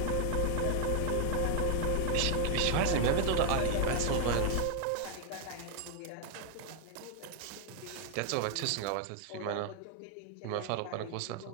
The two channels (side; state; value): both; different; correlation 0.00